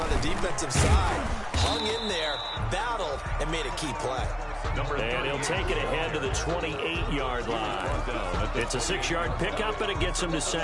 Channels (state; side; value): identical; both; correlation 1.00